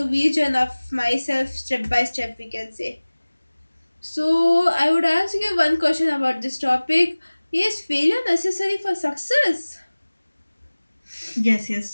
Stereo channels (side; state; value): both; inverted; correlation -1.00